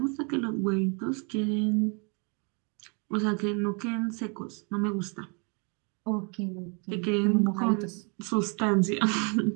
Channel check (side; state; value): left; quieter; 35.3 dB